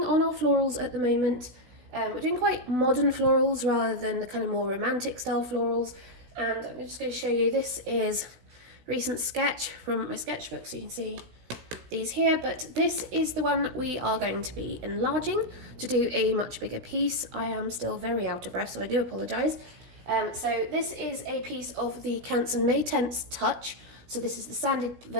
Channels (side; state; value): left; late; 16 ms